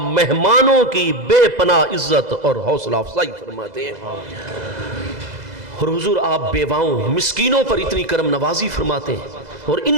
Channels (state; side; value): late; left; 2.0 ms